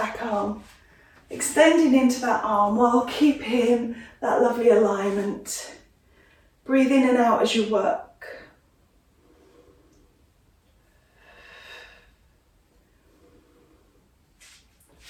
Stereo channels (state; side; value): identical; both; correlation 1.00